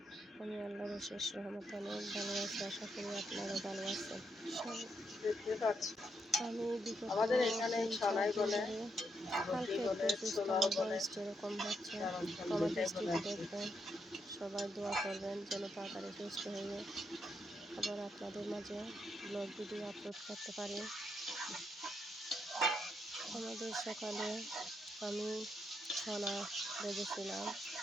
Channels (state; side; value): normal; both; correlation 0.79